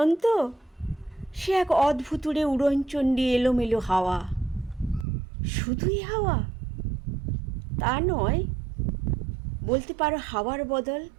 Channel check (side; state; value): left; drops out; at 5.1 s